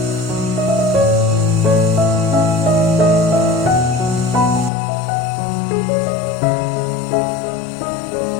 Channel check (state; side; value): drops out; right; at 4.7 s